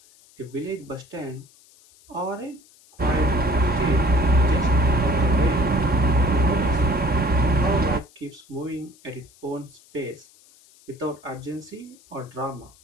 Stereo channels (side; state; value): left; noise; hiss, 27 dB below the sound